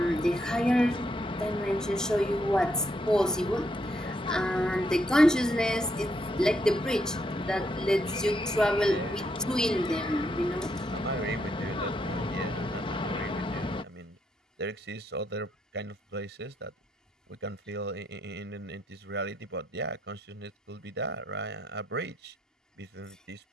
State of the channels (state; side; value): normal; both; correlation 0.76